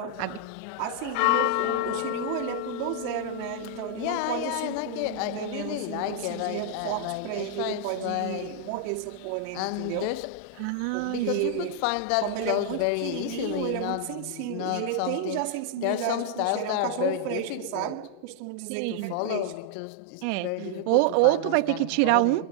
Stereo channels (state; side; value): different; both; correlation -0.01